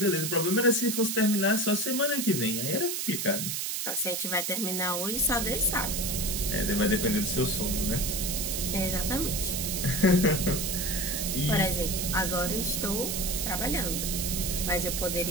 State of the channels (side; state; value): right; noise; hiss, 2 dB below the sound